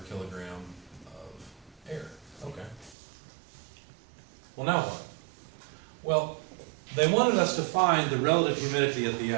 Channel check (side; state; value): left; drops out; at 3.0 s